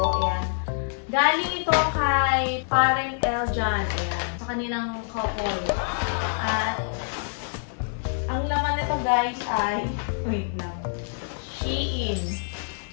Galing ito kay Pareng Eljan. Ayan. Sa kanilang couple. At ang laman nito guys ay, wait lang. Shein.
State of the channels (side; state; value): right; silent; digital silence